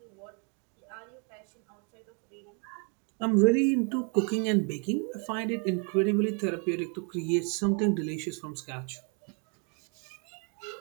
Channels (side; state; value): left; quieter; 37.7 dB